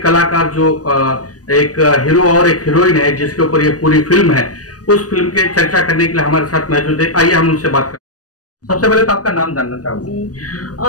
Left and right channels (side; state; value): right; late; 0.67 ms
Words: जो एक हीरो और एक हीरोइन है जिसके ऊपर ये पूरी फिल्म है, उस फिल्म के चर्चा करने के लिए हमारे साथ मौजूद है। आइए हम उनसे बात करें। सबसे पहले तो आपका नाम जानना चाहूंगा।